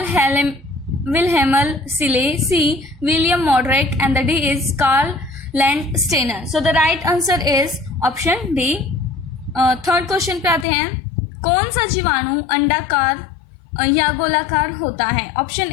Wilhelm सिले, C William Moderek and the D is Karl Landsteiner. So the right answer is option D. Third question पे आते हैं, कौन सा जीवाणु अंडाकार या गोलाकार होता है? Option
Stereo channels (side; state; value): right; drops out; at 10.7 s